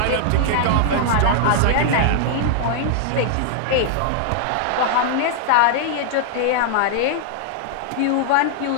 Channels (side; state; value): both; different; correlation -0.01